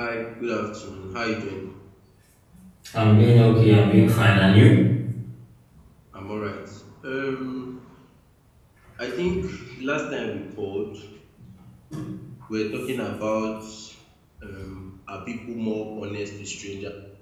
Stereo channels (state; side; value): identical; both; correlation 1.00